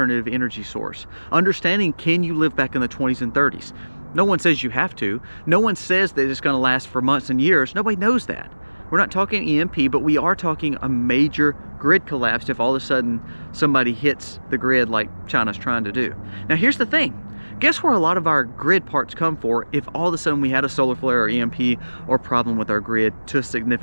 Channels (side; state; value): both; inverted; correlation -1.00